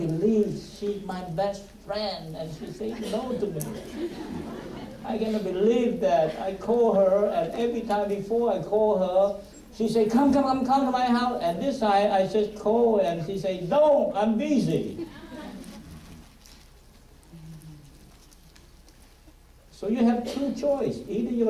she's my best friend and she said no to me. I cannot believe that. I call her, and every time before I call her, she say, come to my house. And this time I just call and she say, no, I'm busy. So you have two choices. Either you're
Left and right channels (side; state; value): both; identical; correlation 1.00